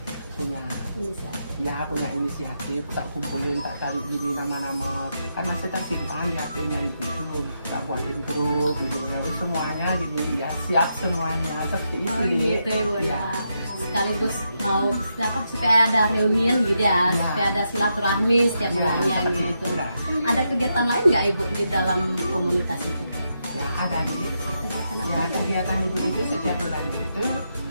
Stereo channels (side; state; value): both; inverted; correlation -0.83